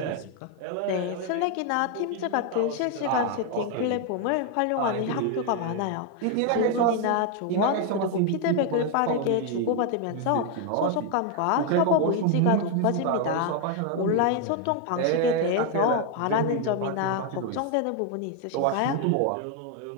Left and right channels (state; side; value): different; both; correlation 0.01